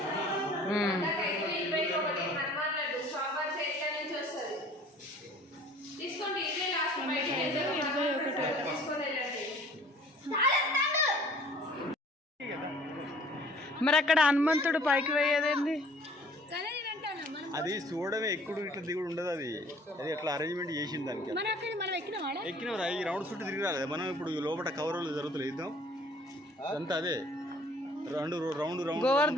మరి అక్కడ హనుమంతుడు పైకి పోయేదేంది? అది చూడమే, ఎక్కుడు ఇట్లా దిగుడు ఉండదు. అది ఎట్లా అరేంజ్మెంట్ చేసింది దానికి. ఎక్కినవరా ఈ రౌండ్ చుట్టూ తిరిగి రాలేదు. మనం ఇప్పుడు లోపల కవర్లు జరుగుతుంది ఇద్దాం అంతా. అదే రౌండ్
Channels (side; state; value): both; normal; correlation 0.52